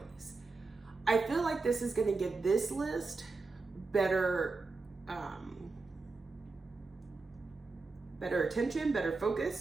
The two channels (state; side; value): quieter; left; 3.9 dB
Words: I feel like this is going to give this list better better attention, better